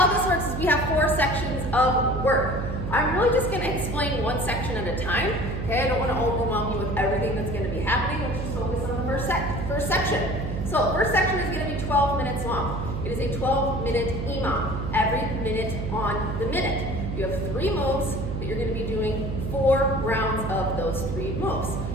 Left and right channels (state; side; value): noise; right; hum, 4 dB below the sound